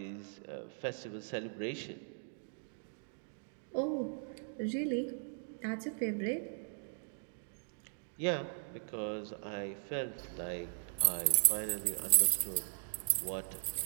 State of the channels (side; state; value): left; silent; digital silence